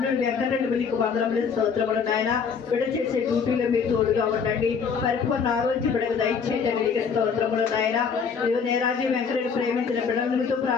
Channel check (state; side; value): quieter; right; 6.1 dB